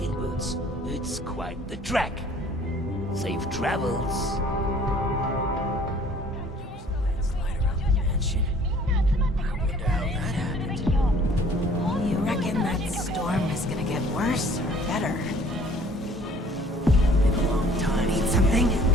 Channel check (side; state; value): both; normal; correlation 0.54